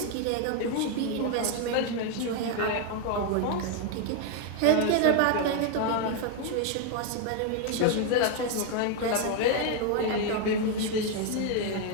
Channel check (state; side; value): different; both; correlation 0.01